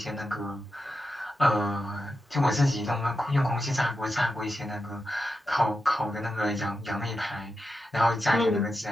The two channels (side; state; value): both; normal; correlation 0.89